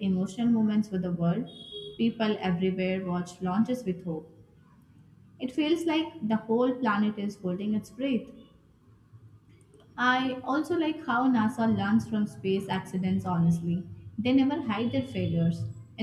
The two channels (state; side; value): identical; both; correlation 1.00